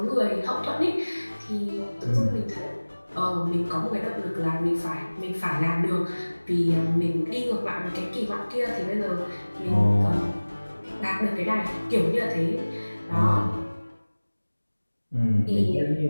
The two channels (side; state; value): both; inverted; correlation -1.00